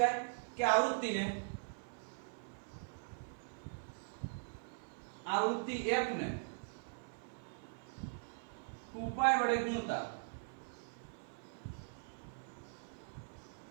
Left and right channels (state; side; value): silent; left; 50 dB below the other